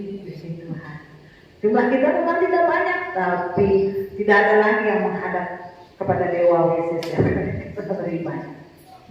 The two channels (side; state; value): both; identical; correlation 1.00